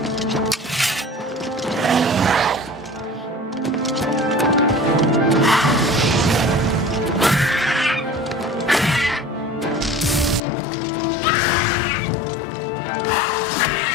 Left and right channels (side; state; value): right; drops out; at 10.4 s